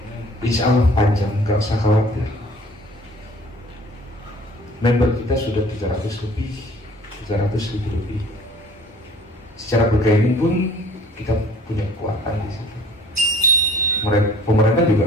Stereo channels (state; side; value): normal; both; correlation 0.51